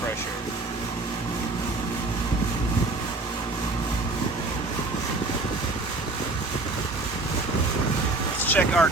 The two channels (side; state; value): left; quieter; 3.2 dB